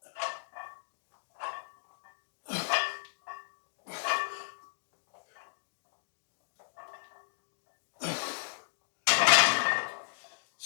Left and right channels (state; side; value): silent; right; digital silence